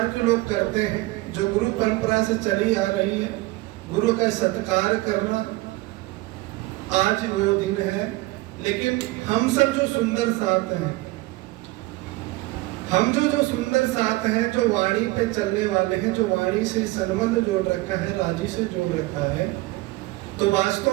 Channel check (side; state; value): left; quieter; 20.4 dB